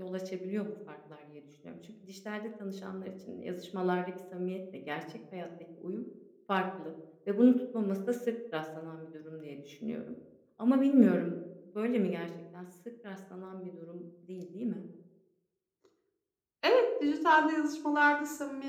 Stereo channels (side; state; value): both; identical; correlation 1.00